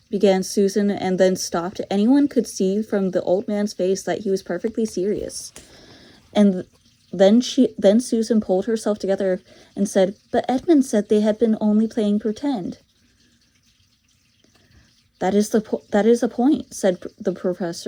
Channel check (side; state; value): both; identical; correlation 1.00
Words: began Susan, and then stopped. Anyone could see from the old man's face that he was perfectly serious. And then Susan pulled herself together and said, "But Edmund said they had been only playing pretend." That is a point," said the